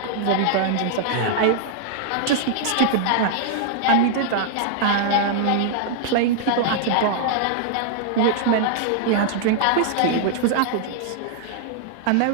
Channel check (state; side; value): different; both; correlation -0.01